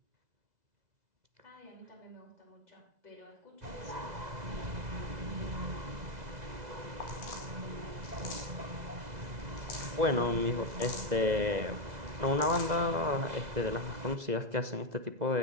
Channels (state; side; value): late; left; 2.0 ms